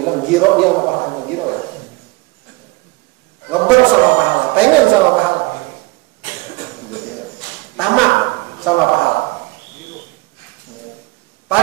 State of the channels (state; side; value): quieter; left; 23.7 dB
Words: giro, dia mau pahala, giro ya. Ngeber sama pahala, pengen sama pahala. Tamak sama pahala.